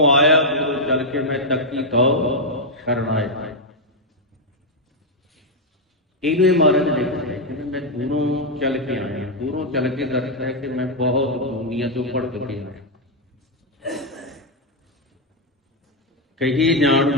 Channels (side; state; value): both; normal; correlation 0.00